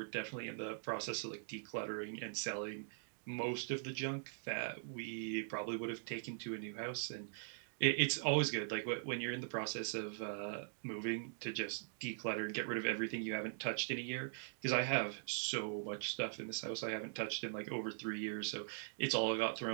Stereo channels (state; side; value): silent; left; digital silence